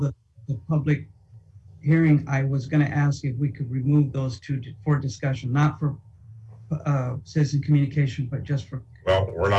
public hearing, I was going to ask if we could remove those 2 for discussion, not for citizen communication, but just for. Well, we're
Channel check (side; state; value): both; identical; correlation 1.00